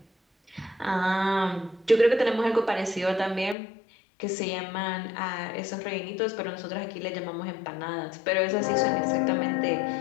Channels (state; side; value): drops out; right; at 3.6 s